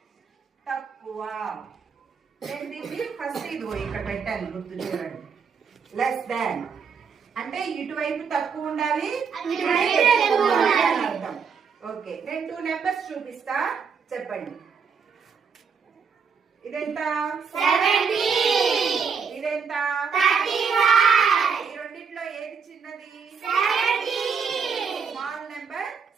తక్కువ. దీన్ని ఫస్ట్ ఇదిగో ఇక్కడ పెట్టాను గుర్తు చూడండి. లెస్ దాన్ అంటే ఇటువైపు తక్కువ ఉండాలి, అర్థం. ఓకే, నేను 2 నెంబర్స్ చూపిస్తా, చెప్పండి. ఇదెంత? 70. ఇదెంత? 35. ఈ రెండిట్లో ఏది చిన్నది? 70. Small number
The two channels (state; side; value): quieter; left; 6.1 dB